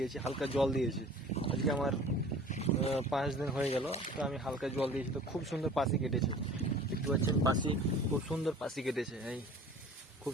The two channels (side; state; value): both; normal; correlation 0.45